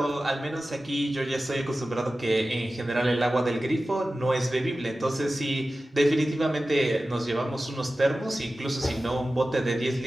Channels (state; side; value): normal; both; correlation 0.95